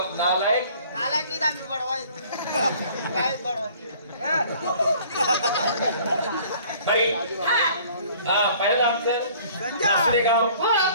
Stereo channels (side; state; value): both; inverted; correlation -0.53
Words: नालायक. नालायक आम्ही बडवाय काय बडवाय भाई पहिलं आमचं गाव